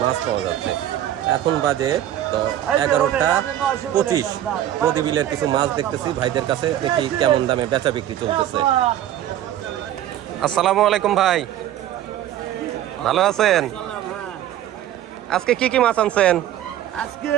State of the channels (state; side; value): quieter; left; 12.0 dB